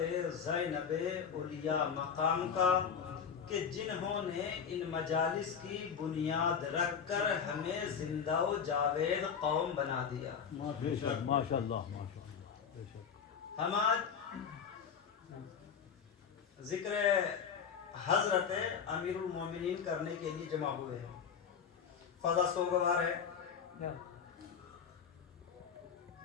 زینب اولیاء مقام کا کہ جنہوں نے ان مجالس کی بنیاد رکھ کر ہمیں زندہ و جاوید قوم بنا دیا. ماشاءاللہ. ہم آج ذکر حضرت امیر المومنین کرنے کے لیے جمع ہوئے ہیں. فضا سوگوار ہے،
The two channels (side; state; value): right; quieter; 7.0 dB